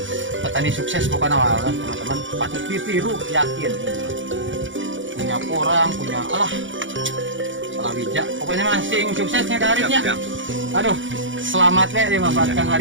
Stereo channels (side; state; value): left; late; 0.56 ms